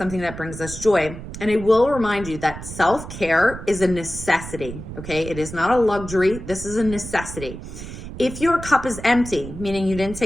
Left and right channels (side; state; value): right; noise; rumble, 11 dB below the sound